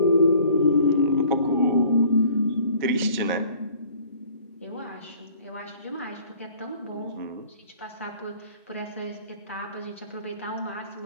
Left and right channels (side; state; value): both; inverted; correlation -0.52